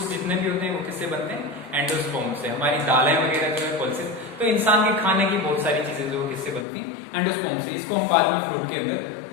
जितने भी होते हैं वो किससे बनते हैं, एंडोस्पर्म से। हमारी दालें वगैरह जो है पल्सेस, तो इंसान के खाने की बहुत सारी चीजें जो किससे बनती हैं, एंडोस्पर्म से। इसको हम बाद में फ्रूट के अंदर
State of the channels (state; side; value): drops out; right; at 6.7 s